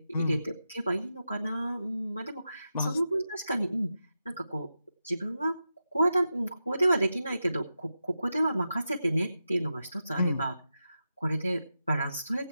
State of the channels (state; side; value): inverted; both; correlation -0.89